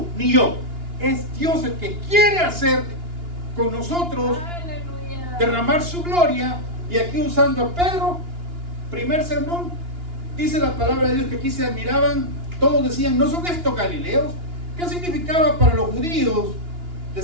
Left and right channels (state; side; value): late; left; 2.9 ms